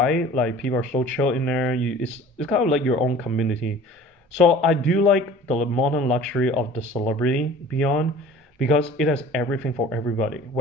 like people are so chill in there. It's kind of like your own community. So I do like the modern luxury of the Celebrity Beyond because it has everything for everybody,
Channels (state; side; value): normal; both; correlation 0.45